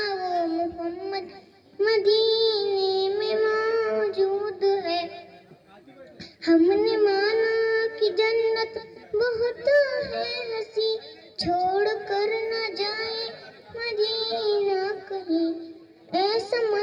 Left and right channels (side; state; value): both; identical; correlation 1.00